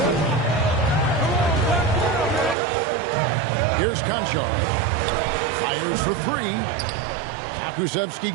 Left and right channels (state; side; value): drops out; left; at 2.6 s